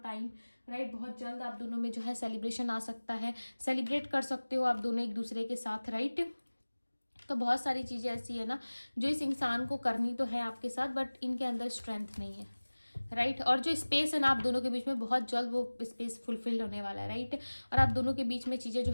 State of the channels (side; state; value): both; inverted; correlation -1.00